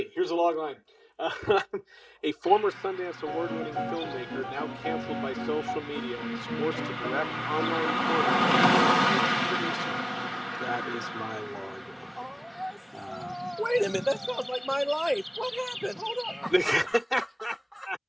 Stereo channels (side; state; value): both; identical; correlation 1.00